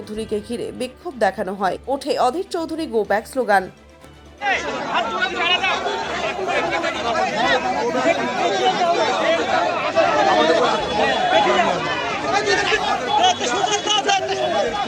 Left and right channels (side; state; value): both; identical; correlation 1.00